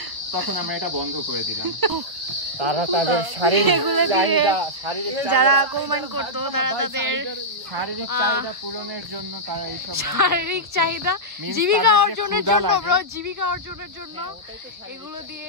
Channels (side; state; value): left; late; 1.3 ms